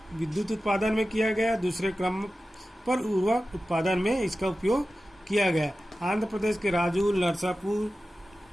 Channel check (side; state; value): both; normal; correlation 0.94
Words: विद्युत उत्पादन में किया गया। दूसरे क्रम पर उर्वरक उत्पादन में इसका उपयोग किया गया। आंध्र प्रदेश के राजूल, नरसापुर,